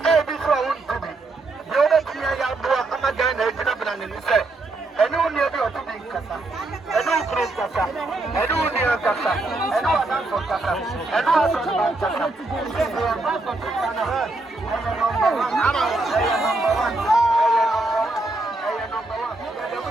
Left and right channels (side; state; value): left; quieter; 3.0 dB